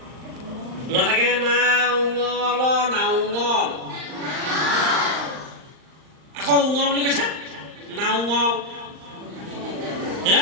নথাকে না উঙল না উঙল আকৌ উঙ বুলি কৈছা না উঙ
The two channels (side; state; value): left; late; 39 ms